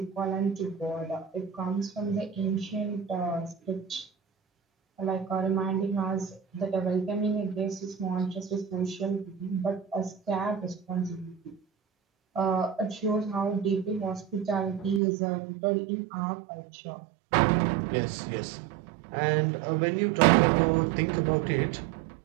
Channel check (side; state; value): left; drops out; at 15.0 s